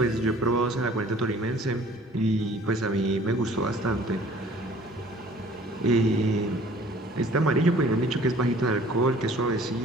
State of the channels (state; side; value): normal; both; correlation 0.52